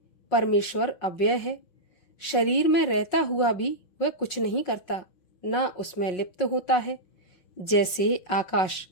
परमेश्वर अव्यय है। शरीर में रहता हुआ भी वह कुछ नहीं करता, न उसमें लिप्त होता है। जैसे आकाश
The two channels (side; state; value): right; late; 5.5 ms